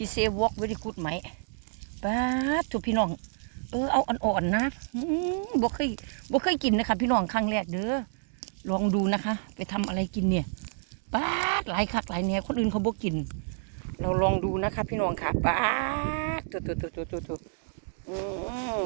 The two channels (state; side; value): silent; left; digital silence